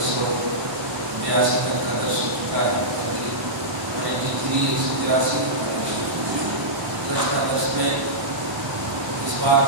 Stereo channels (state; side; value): late; left; 1.1 ms